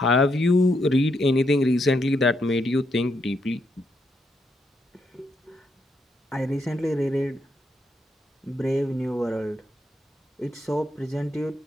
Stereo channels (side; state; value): both; normal; correlation 0.78